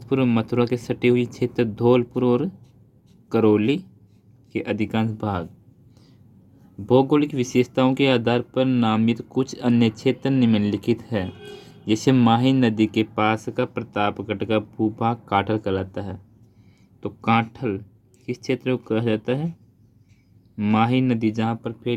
और मथुरा के सटे हुए क्षेत्र धौलपुर और करौली के अधिकांश भाग। भौगोलिक विशेषताओं के आधार पर नामित कुछ अन्य क्षेत्र निम्नलिखित है। जैसे माही नदी के पास का प्रतापगढ़ का भूभाग काठल कहलाता है। तो काठल किस क्षेत्र को कहा जाता है? माही नदी जहाँ पर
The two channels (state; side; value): identical; both; correlation 1.00